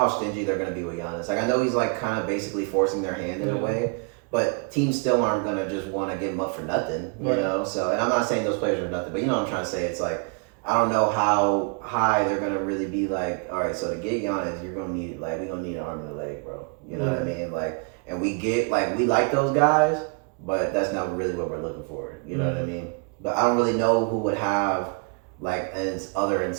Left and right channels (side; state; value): left; quieter; 34.2 dB